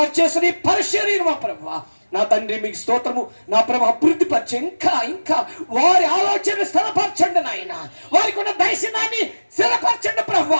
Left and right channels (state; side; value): inverted; both; correlation -1.00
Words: చేసిన పరిశీలన మా ప్రభు నా తండ్రి మీకు స్తోత్రము. నా ప్రభు అభివృద్ధి పరిచే ఇంకా వారి ఆలోచనలు స్థిరపరచండి నాయన. వారికి ఉన్న దర్శనాన్ని స్థిరపరచండి ప్రభు.